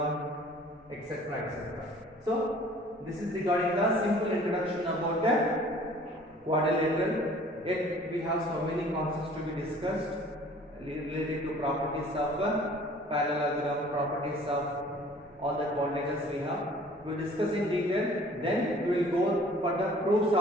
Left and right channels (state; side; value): normal; both; correlation 0.51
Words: etc. etc. So this is regarding the simple introduction about the quadrilateral. Yet we have so many concepts to be discussed related to properties of parallelogram, properties of all the quadrilaterals we have. We will discuss in detail. Then we will go for the proofs